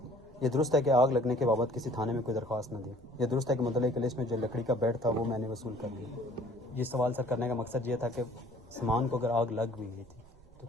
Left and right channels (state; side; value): noise; right; rumble, 25 dB below the sound